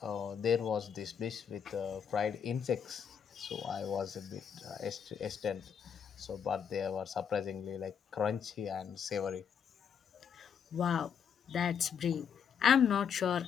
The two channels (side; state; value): right; quieter; 7.5 dB